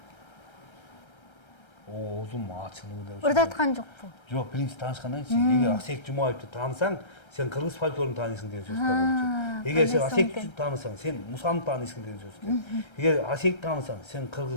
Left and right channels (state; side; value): late; right; 1.3 ms